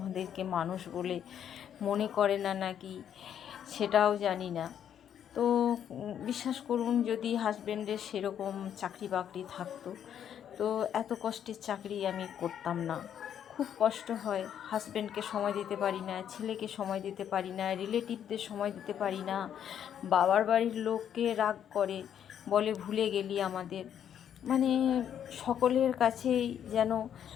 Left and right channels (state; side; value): quieter; right; 9.4 dB